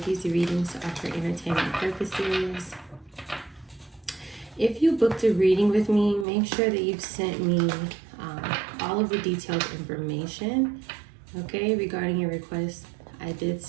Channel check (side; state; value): left; drops out; at 6.2 s